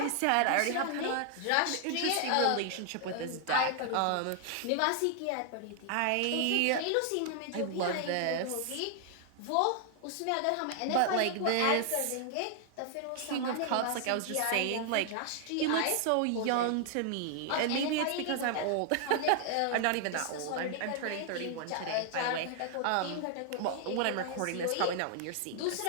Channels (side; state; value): both; different; correlation 0.00